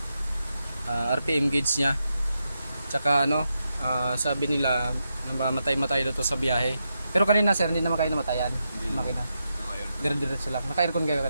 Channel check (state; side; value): inverted; both; correlation -0.85